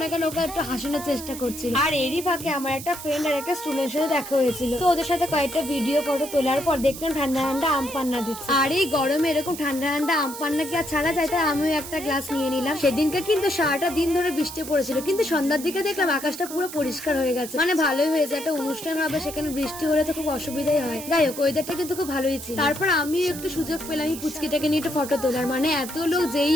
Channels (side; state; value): right; noise; hiss, 11 dB below the sound